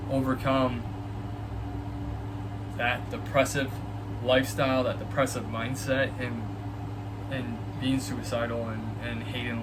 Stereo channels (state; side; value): identical; both; correlation 1.00